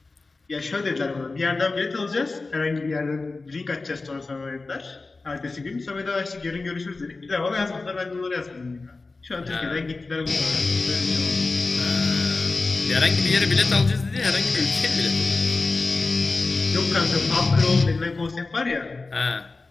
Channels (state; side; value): quieter; right; 3.6 dB